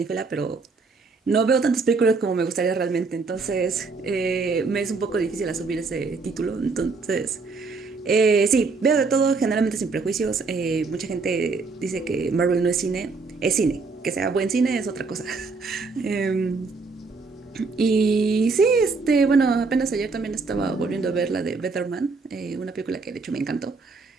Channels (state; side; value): quieter; left; 4.3 dB